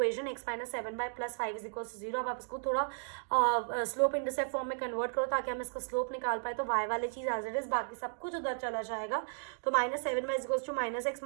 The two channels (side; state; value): left; silent; digital silence